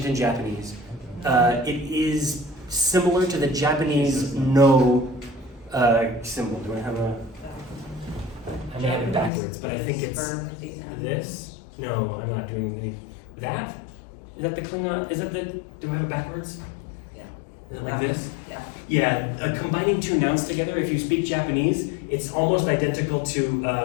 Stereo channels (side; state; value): right; drops out; at 9.3 s